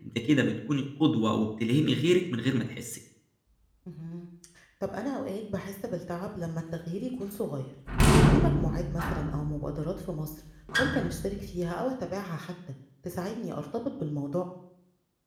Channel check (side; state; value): both; identical; correlation 1.00